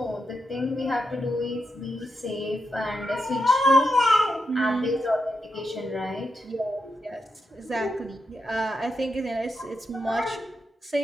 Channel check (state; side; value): normal; both; correlation 0.85